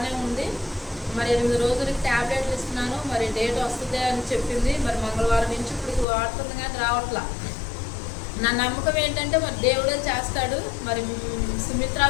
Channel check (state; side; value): drops out; right; at 6.1 s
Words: ఉంది, మరి 8 రోజులకి ట్యాబ్లెట్లు ఇస్తున్నాను, మరి డేట్ వస్తుంది అని చెప్పింది. మరి మంగళవారం నుంచి ఇప్పుడు వాడుతుంది కానీ రావట్లా. నా నమ్మకం ఏంటంటే మరి దేవుడే చేస్తాడు. మరి సుమిత్ర